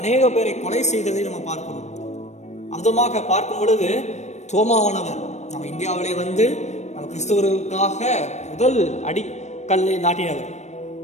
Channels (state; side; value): late; right; 0.33 ms